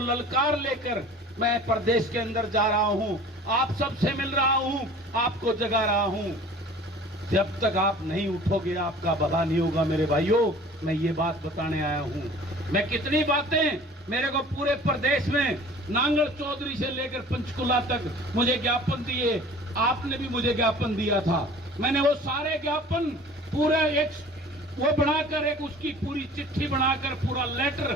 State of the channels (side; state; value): both; normal; correlation 0.45